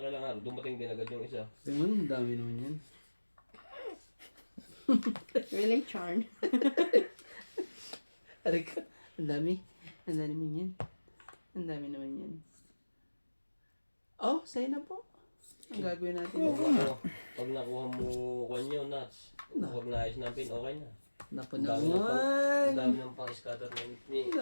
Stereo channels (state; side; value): inverted; both; correlation -1.00